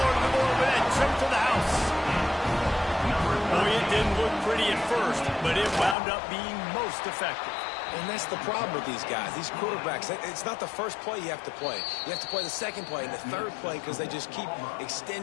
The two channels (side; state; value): right; drops out; at 6.0 s